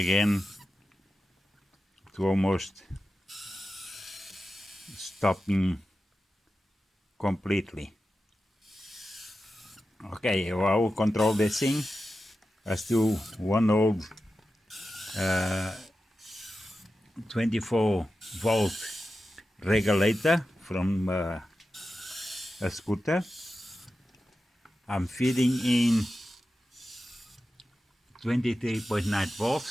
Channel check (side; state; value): both; normal; correlation 0.92